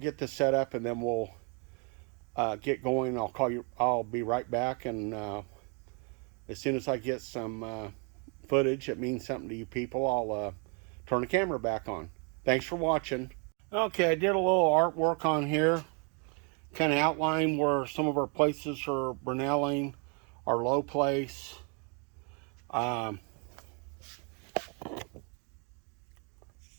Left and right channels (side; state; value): left; quieter; 36.4 dB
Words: this set up, and then we'll get going. I'll call you. I'll be right back, and as soon as I get some footage that means something to you people, I'll turn the camera back on. Thanks for watching. Okay, I did a little artwork on here, kind of outline where some of our places are Brunelling, our low place.